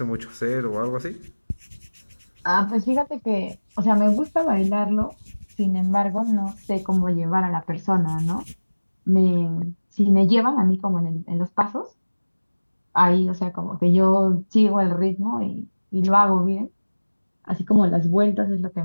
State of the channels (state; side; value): inverted; both; correlation -1.00